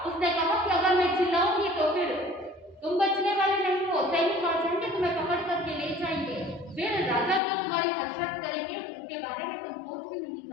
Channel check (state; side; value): drops out; right; at 7.4 s